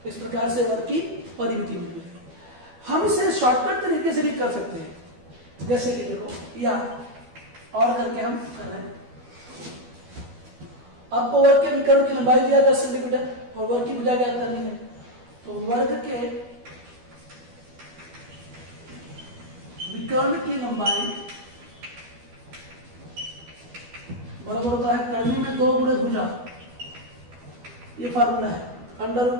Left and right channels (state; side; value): late; left; 12 ms